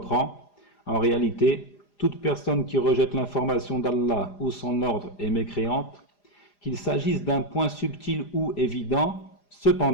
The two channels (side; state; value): right; late; 4.9 ms